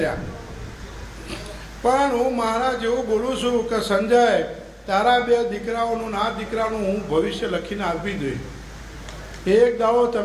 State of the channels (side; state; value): both; identical; correlation 1.00